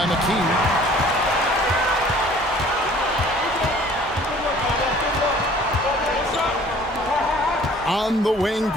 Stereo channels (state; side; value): normal; both; correlation 0.52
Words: McKee. On the wing,